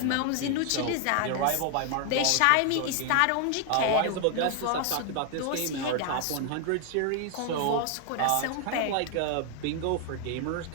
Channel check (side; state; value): both; different; correlation 0.00